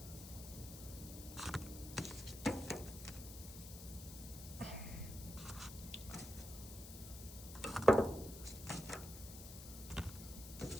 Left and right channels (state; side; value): noise; left; hiss, 12 dB below the sound